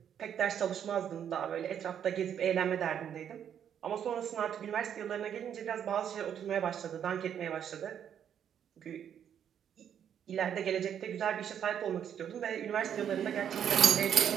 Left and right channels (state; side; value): quieter; left; 9.0 dB